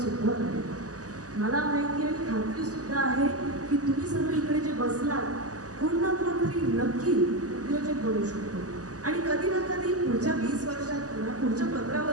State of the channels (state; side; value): late; left; 0.67 ms